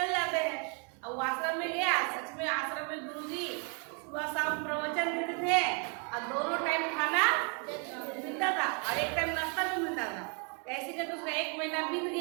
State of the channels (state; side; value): quieter; left; 36.7 dB